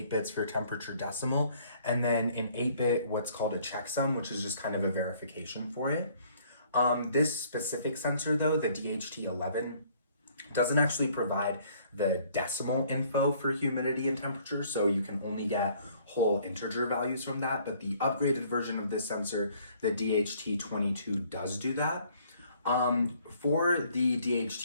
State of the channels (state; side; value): inverted; both; correlation -0.60